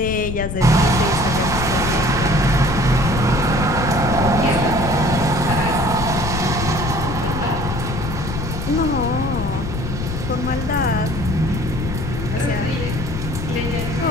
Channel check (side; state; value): left; noise; rumble, 4 dB below the sound